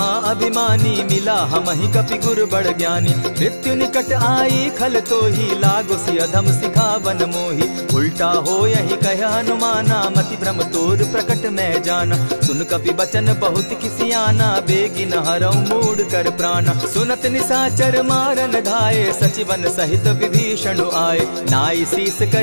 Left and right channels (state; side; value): inverted; both; correlation -1.00